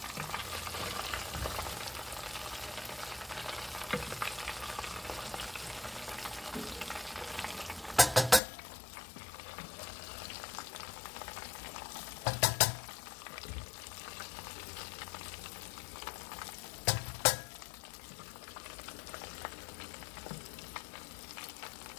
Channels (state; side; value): drops out; right; at 8.4 s